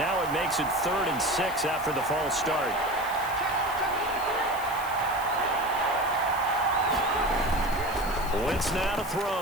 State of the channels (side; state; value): left; noise; hiss, 15 dB below the sound